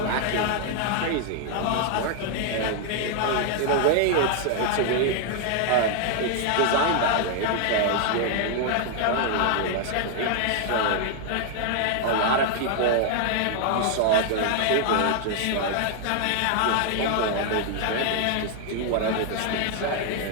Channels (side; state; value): both; different; correlation 0.00